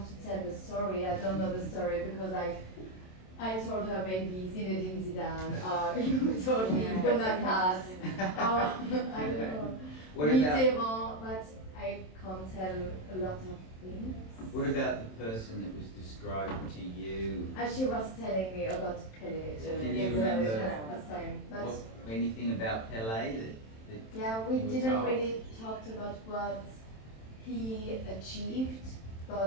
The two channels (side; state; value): right; late; 27 ms